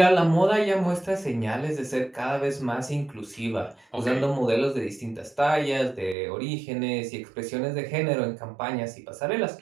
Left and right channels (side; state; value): left; drops out; at 6.2 s